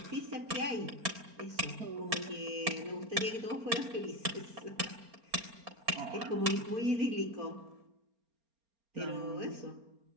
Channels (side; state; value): left; late; 4.3 ms